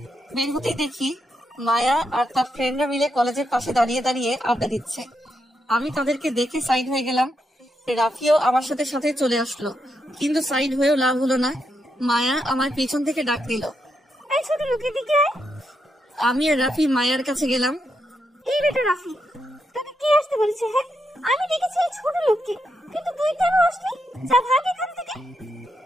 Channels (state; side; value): normal; both; correlation 0.82